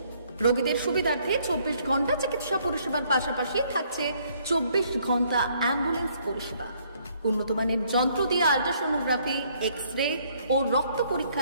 রোগীদের সুবিধার্থে 24 ঘন্টা চিকিৎসা পরিষেবার পাশাপাশি থাকছে 24 ঘন্টা অ্যাম্বুলেন্স পরিষেবা। উন্নত মানের যন্ত্র দিয়ে আল্ট্রাসোনোগ্রাফি, এক্স-রে ও রক্ত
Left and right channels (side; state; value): both; inverted; correlation -0.66